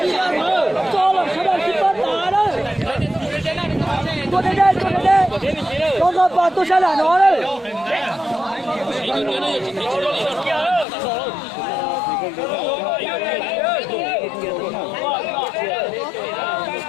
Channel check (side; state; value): right; drops out; at 10.9 s